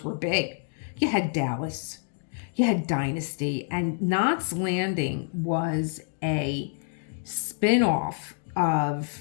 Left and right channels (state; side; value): silent; right; 60 dB below the other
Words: were big. You had Dallas, you had Dynasty, and Knots Landing was a spin-off of